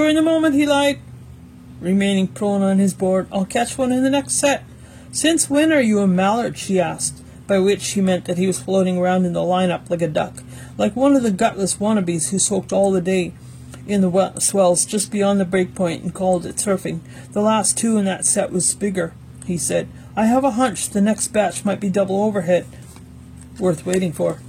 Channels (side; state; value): both; identical; correlation 1.00